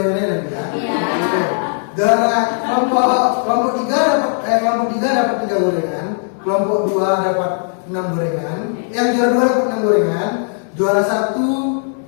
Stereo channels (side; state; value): right; silent; 67 dB below the other